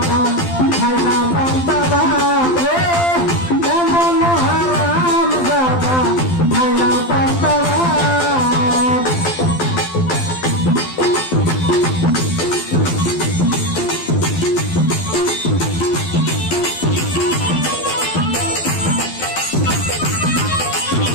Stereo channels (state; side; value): late; right; 12 ms